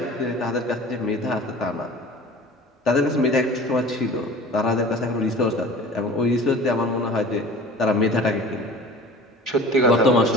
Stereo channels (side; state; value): both; normal; correlation 0.42